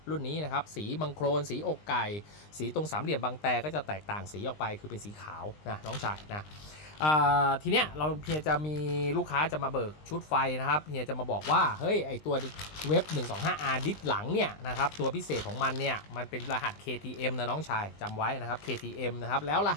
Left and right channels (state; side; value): late; right; 20 ms